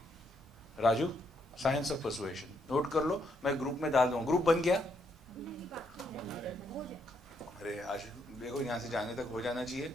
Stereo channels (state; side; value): normal; both; correlation 0.75